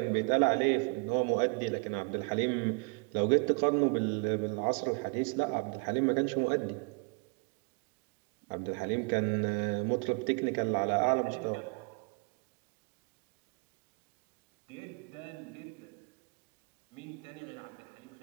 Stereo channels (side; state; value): left; quieter; 36.7 dB